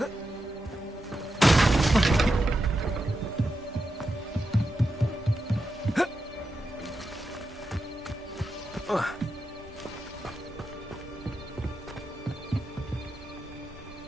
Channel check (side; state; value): both; normal; correlation 0.88